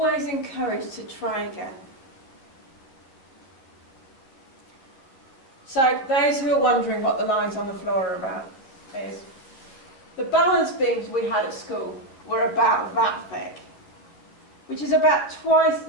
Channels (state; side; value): late; right; 11 ms